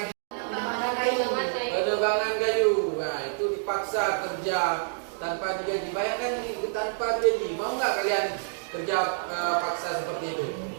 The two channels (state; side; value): silent; left; digital silence